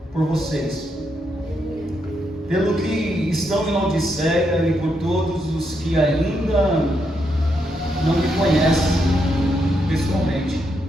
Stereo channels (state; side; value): normal; both; correlation 0.80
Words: por vocês, pelo que estão em Laodiceia e por todos os que ainda não me conhecem pessoalmente.